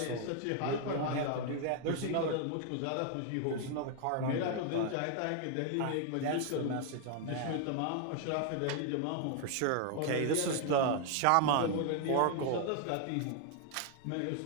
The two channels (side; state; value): both; different; correlation 0.00